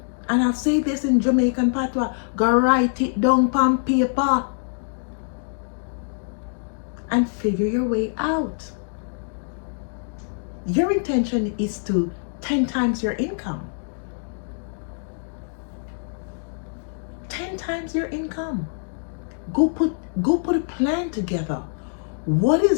And I'll say this in Jamaican patois, go write it down on paper and figure your way out. Your intention is to 10 times your income. 10 times your income. Go put a plan together. What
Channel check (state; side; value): silent; right; digital silence